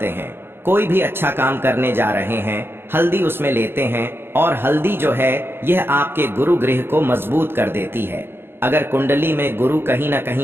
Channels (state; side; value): late; left; 0.11 ms